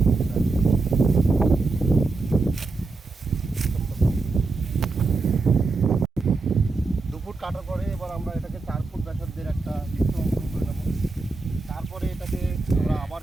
কাটার পরে এবার আমরা এটাকে 4 ফুট ব্যাসার্ধের একটা বৃত্ত অঙ্কন করে নেব। তারপরে এটাকে আমরা আবার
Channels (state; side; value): quieter; left; 3.7 dB